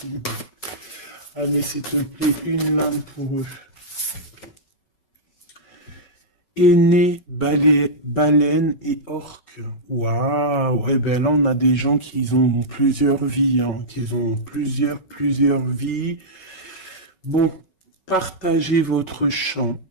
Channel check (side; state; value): right; late; 5.3 ms